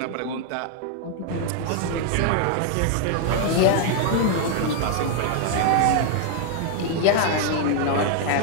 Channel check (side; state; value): both; different; correlation 0.00